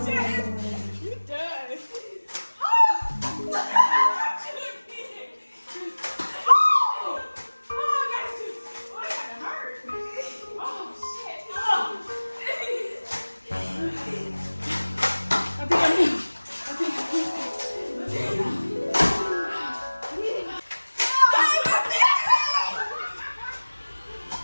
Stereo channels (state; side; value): inverted; both; correlation -1.00